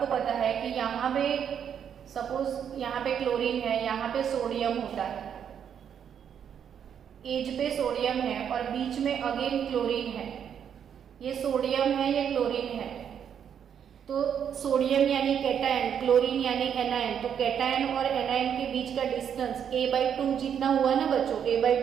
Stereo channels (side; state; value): left; quieter; 8.4 dB